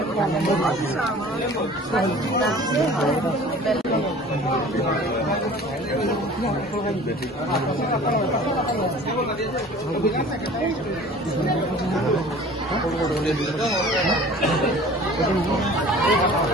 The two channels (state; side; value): normal; both; correlation 0.45